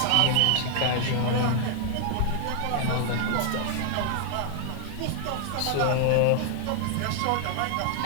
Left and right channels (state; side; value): different; both; correlation 0.00